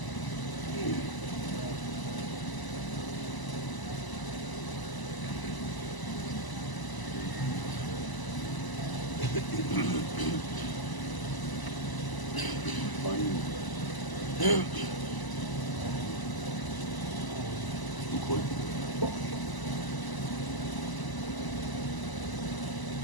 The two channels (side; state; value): right; late; 1.0 ms